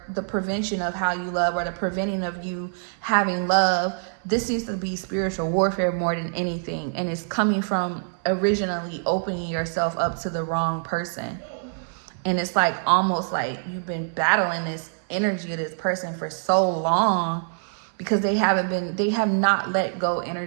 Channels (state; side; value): silent; left; 62 dB below the other